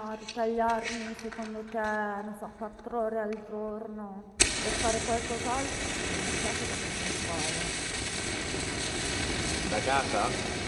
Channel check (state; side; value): identical; both; correlation 1.00